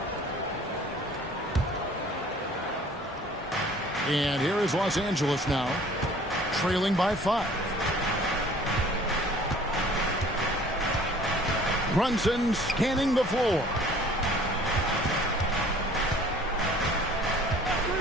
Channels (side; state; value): both; normal; correlation 0.52